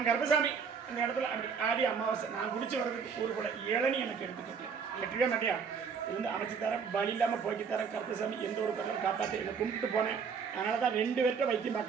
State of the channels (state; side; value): quieter; left; 6.1 dB